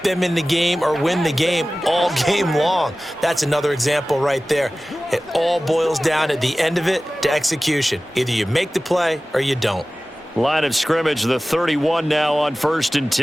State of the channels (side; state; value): both; normal; correlation 0.97